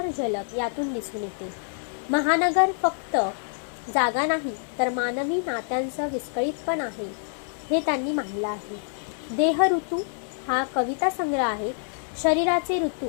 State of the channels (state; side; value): silent; right; digital silence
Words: झलक यातून दिसून येते. महानगर फक्त जागा नाही, तर मानवी नात्यांचं विस्कळीतपण आहे, हे त्यांनी मांडलं आहे. देह ऋतू हा कविता संग्रह आहे. शरीराचे